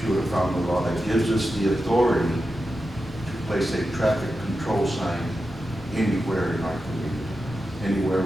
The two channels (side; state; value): both; normal; correlation 0.90